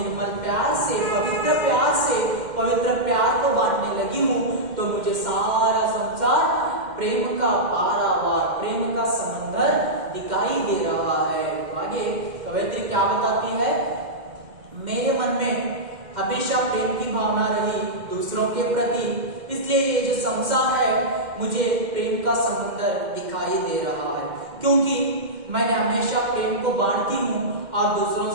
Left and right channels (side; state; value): left; late; 2.1 ms